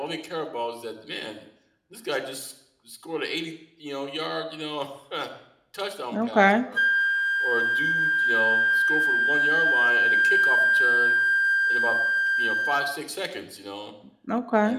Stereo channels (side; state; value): both; identical; correlation 1.00